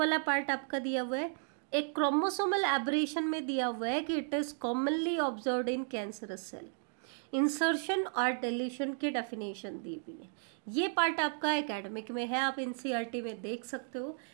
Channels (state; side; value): silent; left; 55 dB below the other